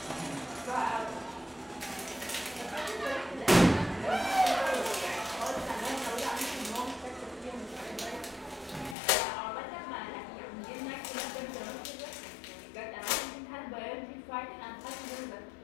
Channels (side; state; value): right; drops out; at 9.0 s